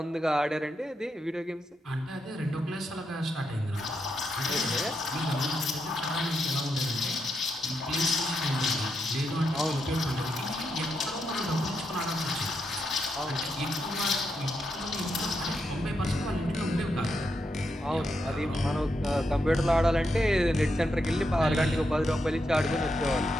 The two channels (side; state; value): both; normal; correlation 0.83